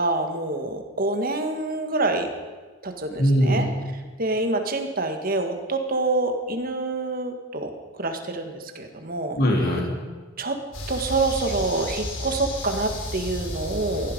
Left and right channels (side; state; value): both; normal; correlation 0.22